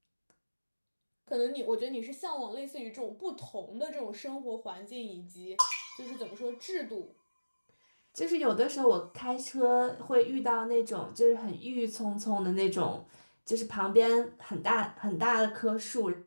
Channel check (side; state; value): both; inverted; correlation -1.00